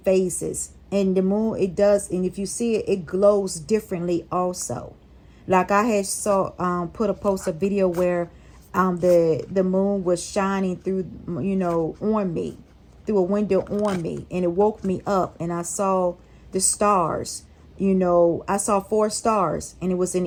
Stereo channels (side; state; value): both; identical; correlation 1.00